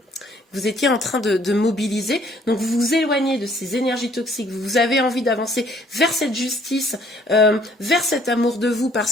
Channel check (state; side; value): normal; both; correlation 0.61